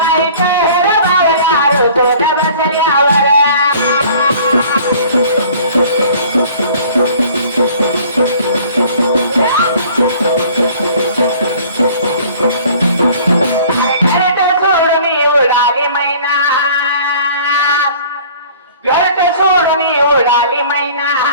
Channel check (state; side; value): inverted; both; correlation -0.50